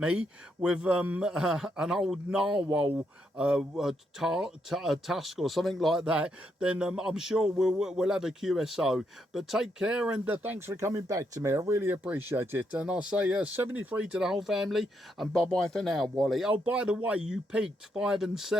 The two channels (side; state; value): both; normal; correlation 0.78